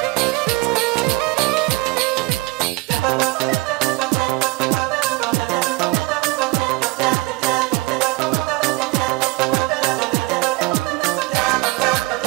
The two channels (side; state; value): left; quieter; 21.9 dB